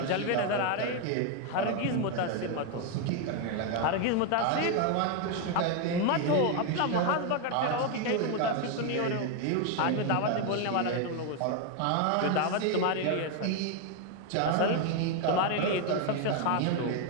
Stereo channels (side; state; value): both; different; correlation 0.01